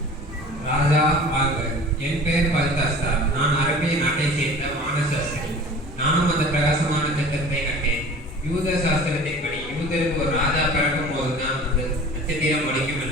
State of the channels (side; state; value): both; normal; correlation 0.42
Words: ராஜா வாழ்க. என் பெயர் பல்தாஸ்தார். நான் அரபிய நாட்டை சேர்ந்த வானசாஸ்திரி. நானும் அந்த பிரகாசமான நட்சத்திரத்தை கண்டேன். யூத சாஸ்திரத்தின்படி யூதருக்கு ஒரு ராஜா பிறக்கும் போதுதான் அந்த நட்சத்திரம் ஒழிக்கும்